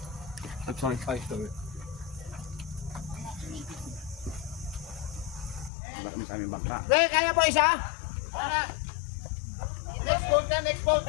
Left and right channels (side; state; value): right; drops out; at 5.7 s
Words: Sorry. Wala kami sa aming bangka. Kaya po isa? Next bolt na, next bolt.